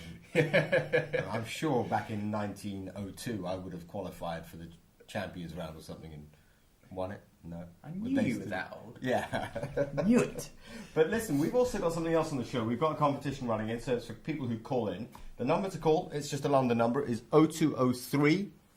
them. I'm sure back in 1902 I would have qualified for the Champions Round or something and won it. No. I knew you were that old. Yeah. Knew it. But listen, we've also got something else on the show. We've got a competition running in, so it's for people who call in. The number to call, it's just a London number, is 0203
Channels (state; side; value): identical; both; correlation 1.00